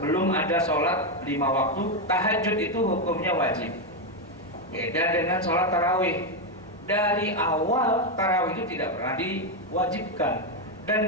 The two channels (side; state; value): both; normal; correlation 0.06